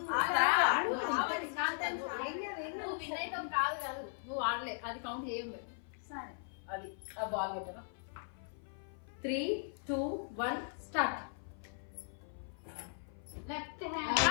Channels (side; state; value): right; silent; 52 dB below the other